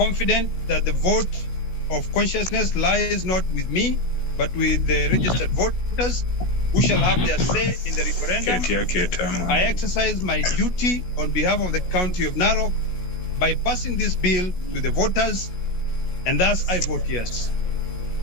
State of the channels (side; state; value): right; late; 16 ms